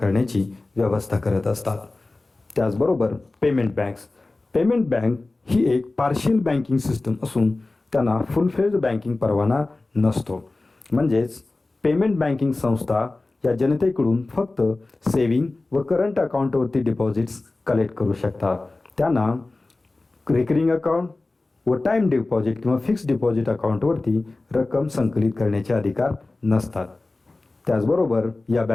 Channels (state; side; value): quieter; right; 3.2 dB